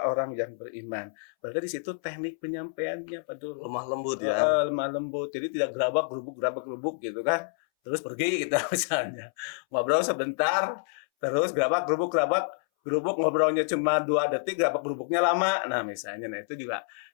orang yang beriman. Berarti di situ teknik penyampaiannya Pak Dul. Lemah lembut ya. Lemah lembut. Jadi tidak gerabak gerubuk gitu kan. Terus pergi kita misalnya. Ngobrol sebentar, terus gerabak gerubuk ngobrolnya cuma 2 detik, gerabak gerubuknya lama. Nah, misalnya itu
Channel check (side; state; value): right; silent; 59 dB below the other